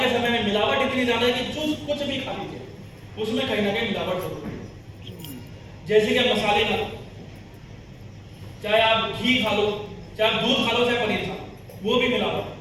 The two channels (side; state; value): both; identical; correlation 1.00